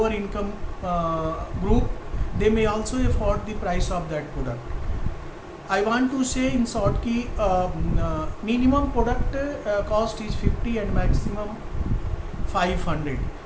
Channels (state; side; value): identical; both; correlation 1.00